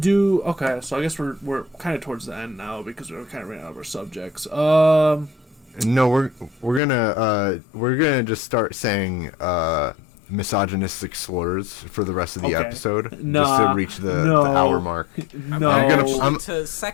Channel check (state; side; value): drops out; right; at 6.8 s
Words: I guess we're kind of towards the end now because we're kind of running out of our subjects. No, we're gonna just start saying misogynistic slurs for the rest of the Okay. episode, just Nah, to reach the no. hour mark. No. I'm- To